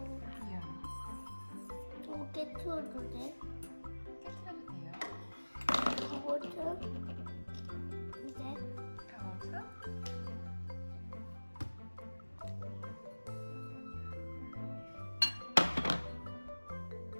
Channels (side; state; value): both; inverted; correlation -1.00